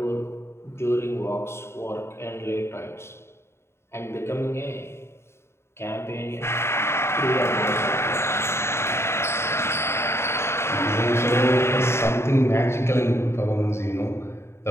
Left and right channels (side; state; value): right; late; 0.12 ms